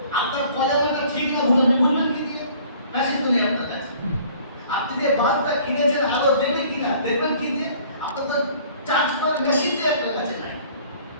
আপনার কলেমাটা ঠিক না বুঝবেন কি দিয়ে? মেশিন তো নেই আপনার কাছে। আপনি যে বাসটা কিনে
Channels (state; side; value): inverted; both; correlation -0.53